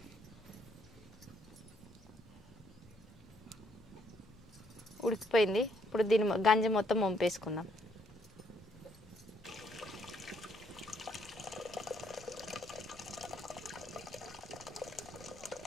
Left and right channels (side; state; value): left; noise; rumble, 24 dB below the sound